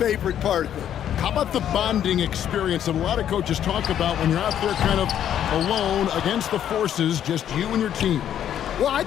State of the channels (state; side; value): quieter; right; 10.2 dB